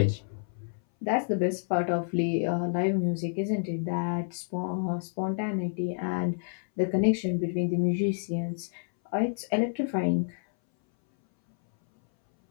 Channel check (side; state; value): right; silent; 59 dB below the other